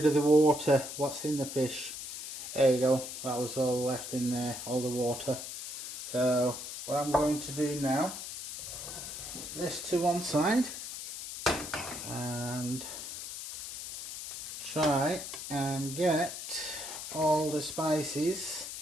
of the water what's in the fish. There you go, that was all left in there, all the water. So what I'm going to do now, put this to one side and try and get all the spices,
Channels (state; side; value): noise; left; hiss, 8 dB below the sound